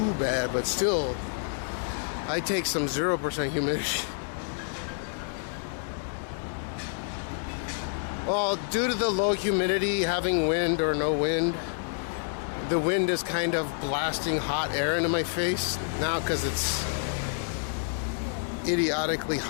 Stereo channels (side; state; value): right; silent; digital silence